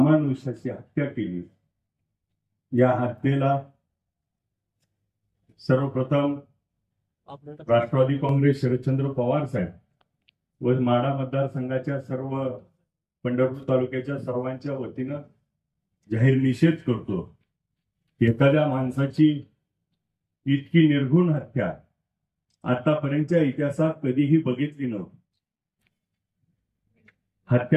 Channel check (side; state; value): both; identical; correlation 1.00